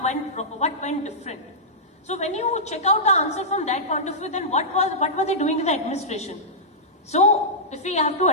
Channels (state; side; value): normal; both; correlation -0.13